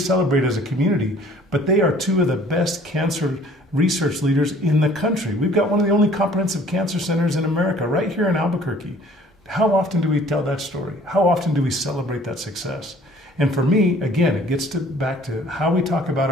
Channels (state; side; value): normal; both; correlation 0.54